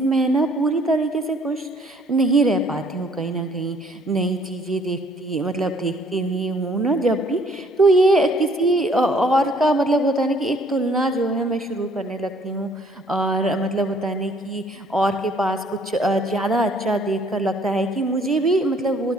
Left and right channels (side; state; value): both; normal; correlation 0.61